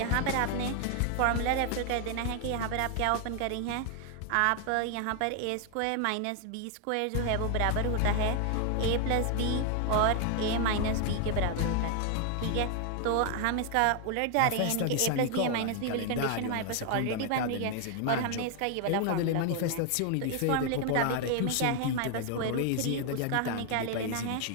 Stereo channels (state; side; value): different; both; correlation 0.00